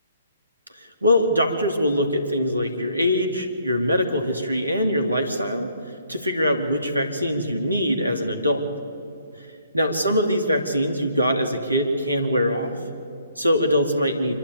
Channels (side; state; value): both; inverted; correlation -0.66